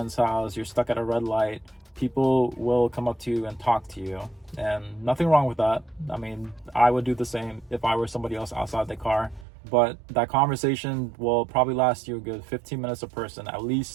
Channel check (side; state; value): left; drops out; at 9.5 s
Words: house, you're stuck at a red light, people will come up to you and talk to you, and nothing wrong with that. I mean, I would do the same if I were somebody else outside the car, but that conversation will probably last you a good 15 minutes a person at